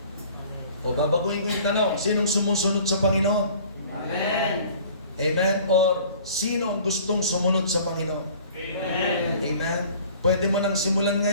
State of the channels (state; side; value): inverted; both; correlation -0.49